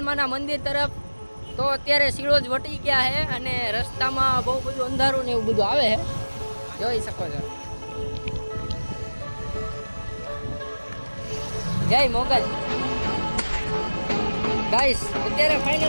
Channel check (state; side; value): inverted; both; correlation -1.00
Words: મંદિર તરફ. તો અત્યારે સિળોજ વટી ગયા છે અને રસ્તામાં બહુ બધું અંધારું ને એવું બધું આવે છે, જોઈ શકો છો. જય મોગલ. ગાઈસ અત્યારે